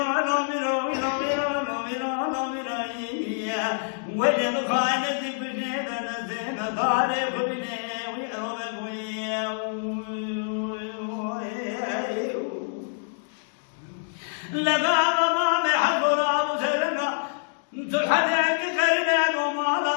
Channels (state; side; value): silent; right; digital silence